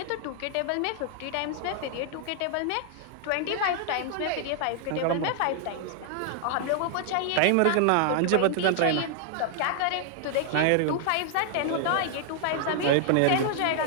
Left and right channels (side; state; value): both; different; correlation 0.00